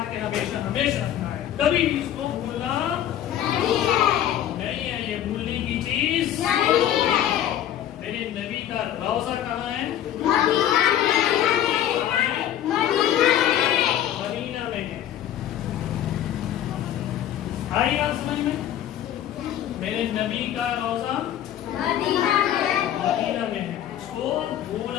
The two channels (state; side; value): quieter; right; 11.2 dB